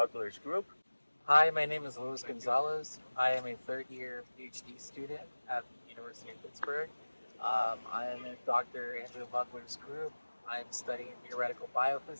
group. Hi, my name is Louis González. I am a third-year PhD student at the University of Pittsburgh. I am in Dr. Andrew Mugler's group. I'm studying theoretical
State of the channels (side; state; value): both; inverted; correlation -1.00